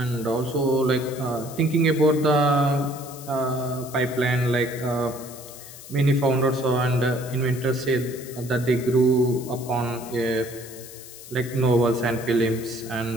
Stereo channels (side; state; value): left; noise; hiss, 16 dB below the sound